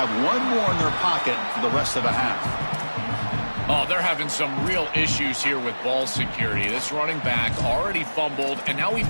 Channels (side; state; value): both; inverted; correlation -1.00